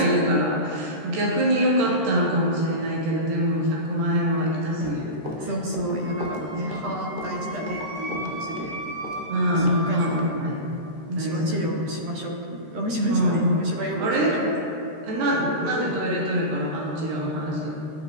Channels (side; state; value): left; late; 13 ms